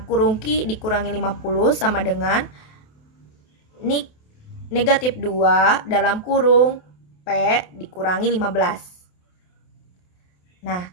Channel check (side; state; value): right; late; 28 ms